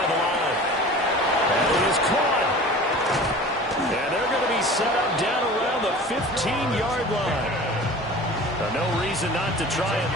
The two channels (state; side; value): normal; both; correlation 0.40